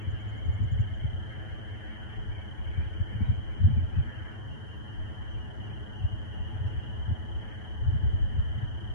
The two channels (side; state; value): right; late; 9.3 ms